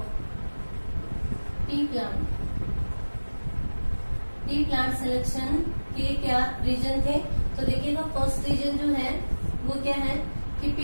tea plant selection के क्या रीजन थे, तो देखिएगा फर्स्ट रीजन जो है वो क्या है कि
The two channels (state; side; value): inverted; both; correlation -1.00